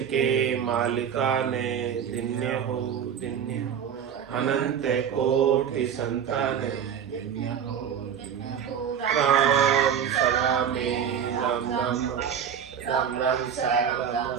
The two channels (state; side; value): quieter; left; 8.2 dB